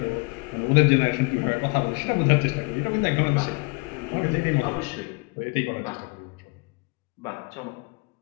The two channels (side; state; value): right; quieter; 30.1 dB